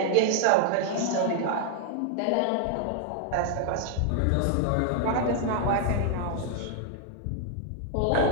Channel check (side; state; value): both; different; correlation 0.00